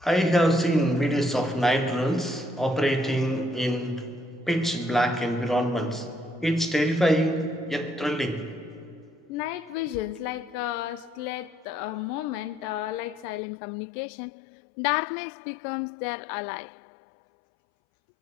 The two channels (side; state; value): right; drops out; at 13.4 s